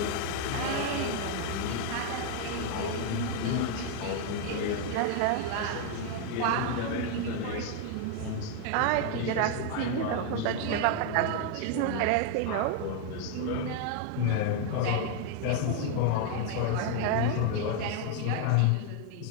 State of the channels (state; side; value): different; both; correlation 0.00